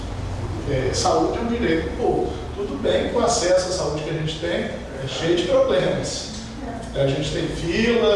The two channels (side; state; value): both; identical; correlation 1.00